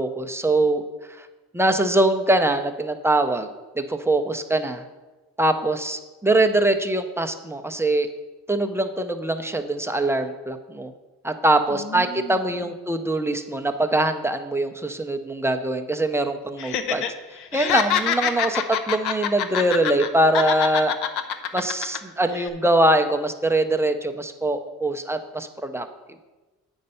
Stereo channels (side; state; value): both; normal; correlation 0.60